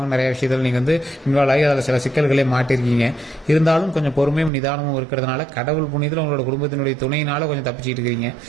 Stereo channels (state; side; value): drops out; left; at 4.5 s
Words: நிறைய விஷயத்தில் நீங்கள் வந்து இன்வால்வ் ஆகி அதில் சில சிக்கல்களே மாட்டிருக்கீங்க. இருந்தாலும் கொஞ்சம் பொறுமையும் நிதானமும் இருக்கிறதுனால கடவுள் புண்ணியத்தில் உங்களோட குடும்பத்தினுடைய துணையினால கொஞ்சம் தப்பிச்சுட்டு இருக்கிறீங்க.